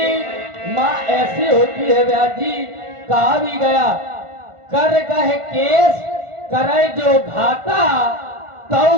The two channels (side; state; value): left; late; 1.5 ms